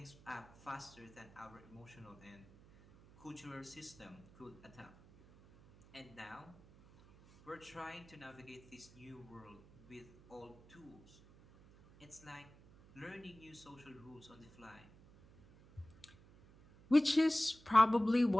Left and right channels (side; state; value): right; noise; hum, 23 dB below the sound